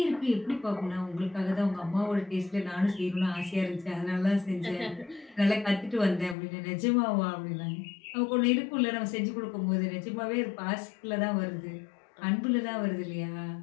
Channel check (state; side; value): drops out; right; at 6.4 s